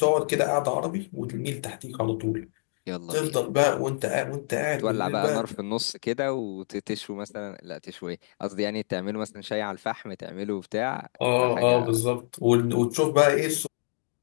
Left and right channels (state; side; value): silent; right; digital silence